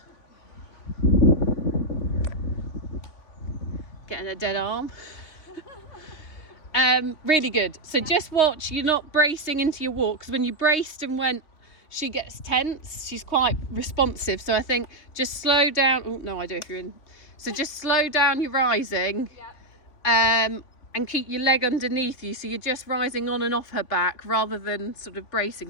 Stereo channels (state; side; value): late; right; 3.5 ms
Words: Getting a dead arm. Really good. So just watch, you're not bracing into your walk, because when you braced and went, she gets tense. She's quite responsive. So I think just slow down. Oh, no idea if you're in. So just slow down your rising. Yep. And keep your leg underneath you, so you're just rising on and off her back rather than sort of bracing,